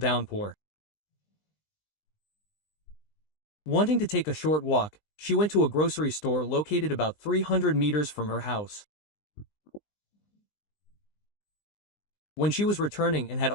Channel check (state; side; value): late; right; 20 ms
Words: Wanting to take a short walk, she went to a grocery store located about 300 meters from her house. When she was returning and had